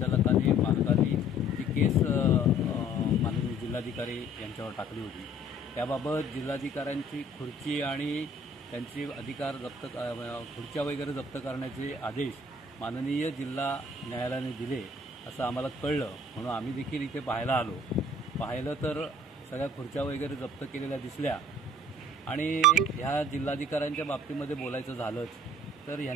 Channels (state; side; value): normal; both; correlation 0.54